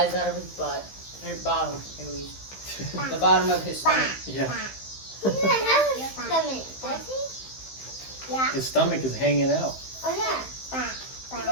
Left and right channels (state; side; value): late; right; 15 ms